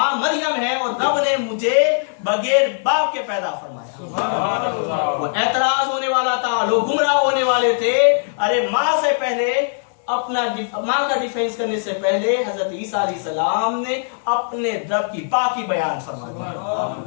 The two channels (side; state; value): right; silent; 63 dB below the other